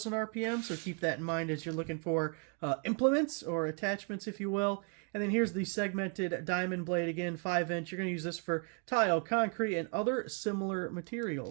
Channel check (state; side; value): quieter; left; 37.1 dB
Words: RPM, so keep that in mind as you're looking for implements or attachments, if you will. And then here's the segmented diamond blade, again, 5-inch. You're going to use this for tile, concrete, and other similar